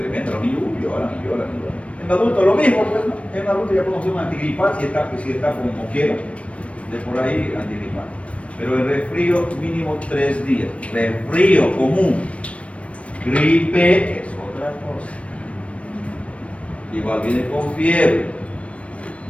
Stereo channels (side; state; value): right; late; 0.063 ms